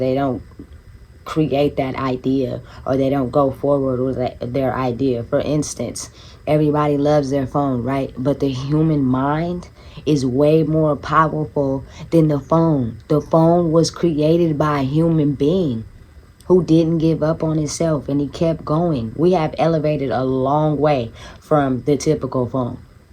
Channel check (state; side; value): identical; both; correlation 1.00